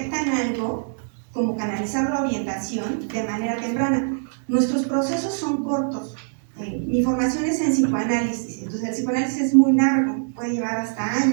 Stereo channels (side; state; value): left; silent; 63 dB below the other